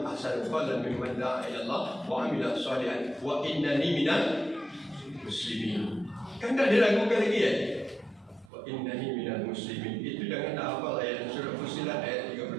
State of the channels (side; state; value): left; drops out; at 8.5 s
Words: ahsanu qawlan mimman da'a ila Allah wa 'amila shalihan wa innani minal muslimin. Kan tidak diragukan lagi ya? Wa innani minal muslimin. Itu jangan hafal ayat surah Fussilat ayat